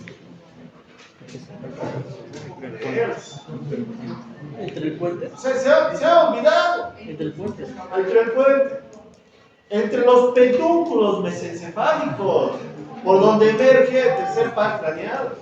¿Entre el puente? Se ha olvidado. ¿Entre el puente? Entre el puente. Entre los pedúnculos mesencefálicos, por donde emerge el tercer par craneal.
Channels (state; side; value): identical; both; correlation 1.00